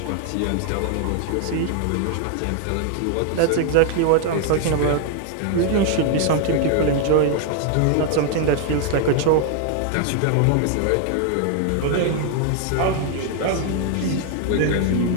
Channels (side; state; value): both; different; correlation 0.00